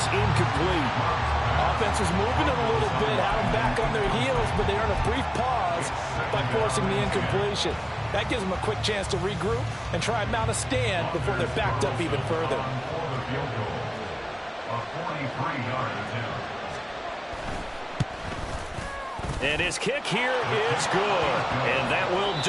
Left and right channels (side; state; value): both; identical; correlation 1.00